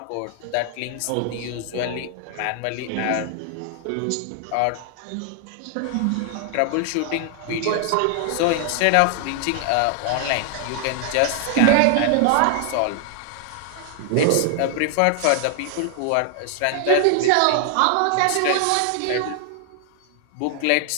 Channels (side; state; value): both; different; correlation 0.00